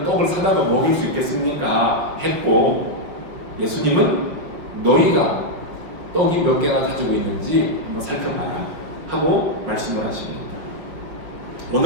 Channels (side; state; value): left; late; 5.7 ms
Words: 떡을 사다가 먹일 수 있겠습니까? 했고 예수님은 너희가 떡이 몇 개나 가지고 있는지 한번 살펴봐라 하고 말씀을 하십니다.